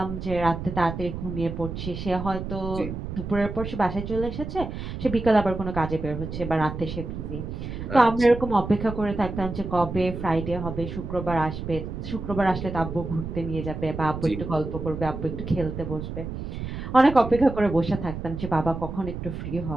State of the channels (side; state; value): right; noise; rumble, 7 dB below the sound